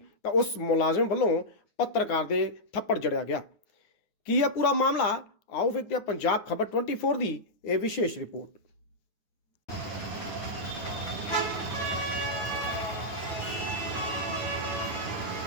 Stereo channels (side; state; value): right; late; 9.8 ms